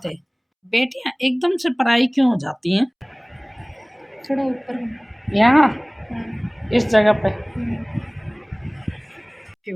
बेटियां एकदम से पराई क्यों हो जाती हैं? थोड़ा ऊपर। यहाँ हाँ। इस जगह पे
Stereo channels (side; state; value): both; identical; correlation 1.00